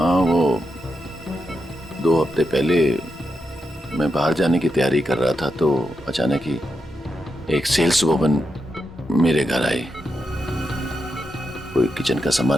वो 2 हफ्ते पहले मैं बाहर जाने की तैयारी कर रहा था तो अचानक ही एक सेल्स वुमन मेरे घर आई। कोई किचन का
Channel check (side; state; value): both; normal; correlation 0.86